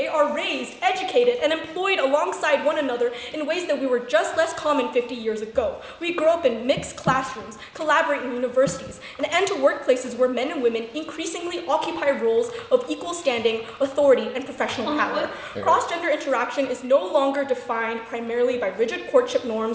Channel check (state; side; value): identical; both; correlation 1.00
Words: are raised, educated, and employed alongside one another in ways that we were just less common 50 years ago. We grow up in mixed classrooms, collaborate in universities, and enter workplaces where men and women increasingly occupy roles of equal standing, authority, and professional power. Cross-gender interaction is no longer defined primarily by rigid courtship